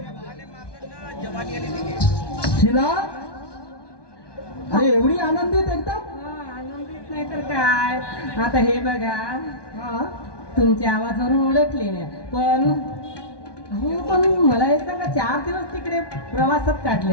शिला अरे एवढी आनंदित एकदम. आनंदित नाही तर काय. आता हे बघा, हा तुमच्या आवाजावरून ओळखले नाही, पण अहो पण मला हे सांगा, 4 दिवस तिकडे प्रवासात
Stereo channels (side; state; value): right; late; 1.2 ms